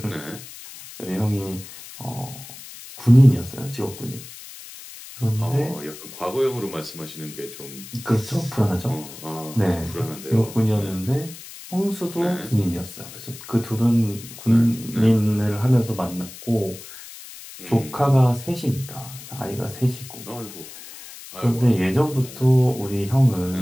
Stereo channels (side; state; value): left; noise; hiss, 15 dB below the sound